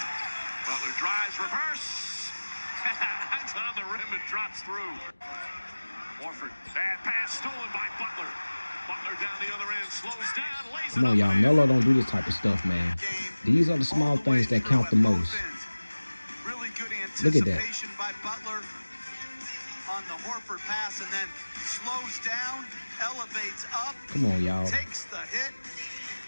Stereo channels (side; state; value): both; inverted; correlation -1.00